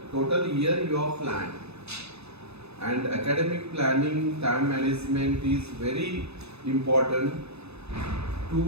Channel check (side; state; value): left; late; 0.79 ms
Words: total year you have planned. And academic planning, time management is very important